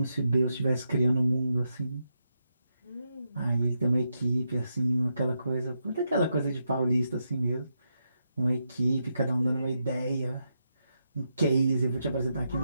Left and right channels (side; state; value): both; inverted; correlation -0.84